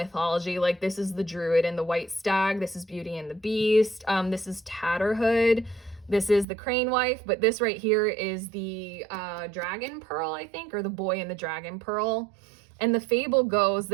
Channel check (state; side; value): drops out; left; at 6.5 s